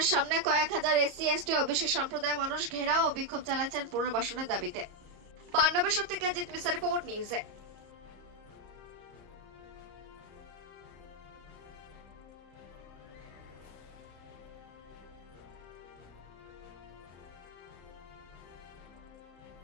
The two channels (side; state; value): left; late; 34 ms